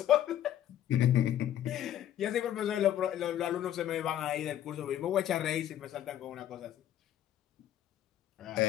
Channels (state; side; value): quieter; right; 11.5 dB